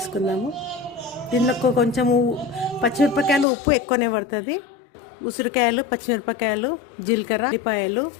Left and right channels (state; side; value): drops out; right; at 3.5 s